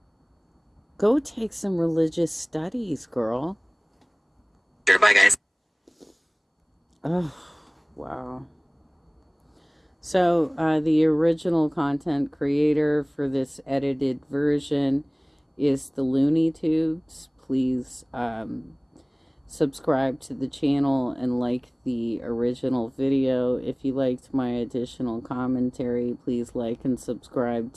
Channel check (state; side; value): identical; both; correlation 1.00